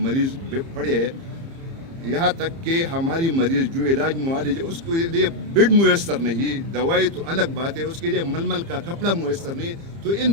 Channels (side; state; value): left; late; 30 ms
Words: پڑے ہیں، یہاں تک کہ ہماری مریض جو علاج معالج ہے اس کے لیے بیڈ میسر نہیں، دوائی تو الگ بات ہے، اس کے لیے ململ کا کپڑا میسر نہیں، تو ان